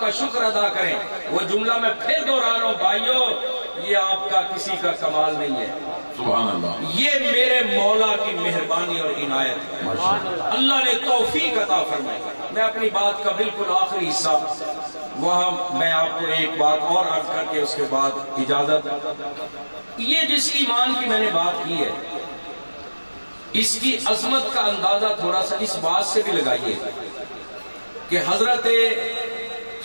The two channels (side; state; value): both; inverted; correlation -1.00